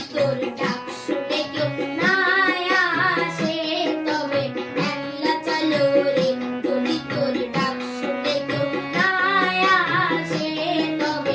তোর ডাক শুনে কেউ না আসে তবে একলা চলো রে। যদি তোর ডাক শুনে কেউ না আসে তবে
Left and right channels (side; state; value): both; identical; correlation 1.00